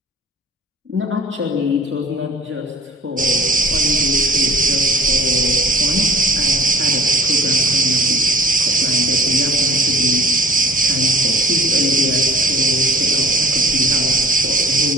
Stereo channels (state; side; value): normal; both; correlation 0.47